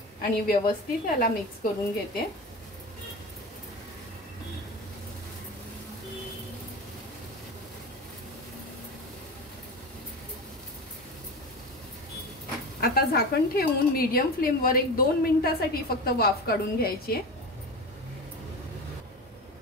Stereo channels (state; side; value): normal; both; correlation 0.28